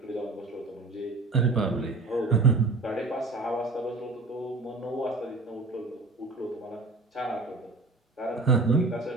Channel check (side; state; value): left; quieter; 3.4 dB